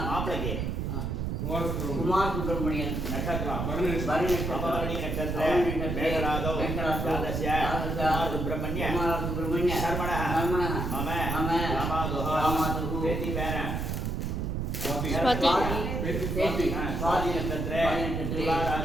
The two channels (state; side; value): noise; right; rumble, 2 dB below the sound